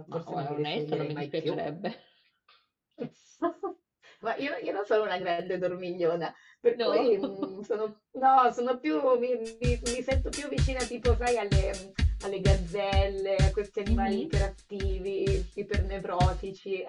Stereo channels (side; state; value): both; identical; correlation 1.00